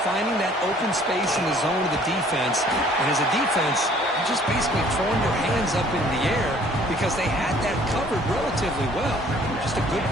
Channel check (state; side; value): normal; both; correlation 0.56